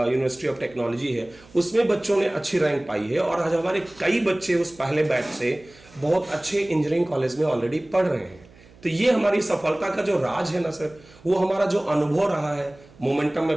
of technology है, उसमें बच्चों ने अच्छी रैंक पाई है। और आज हमारे कई बच्चे उस पहले बैच से बहुत अच्छे इंजीनियरिंग कॉलेज में ऑलरेडी पढ़ रहे हैं। तो ये हमारी सफलता का जो राज है ना सर, वो हमारा जो अनुभव रहा है मोमेंटम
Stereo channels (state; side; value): noise; right; hum, 25 dB below the sound